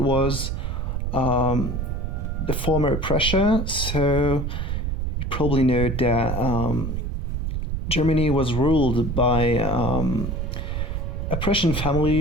the former Prussia, so you probably know that Germany was ruled by a Prussian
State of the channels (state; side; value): noise; right; rumble, 2 dB below the sound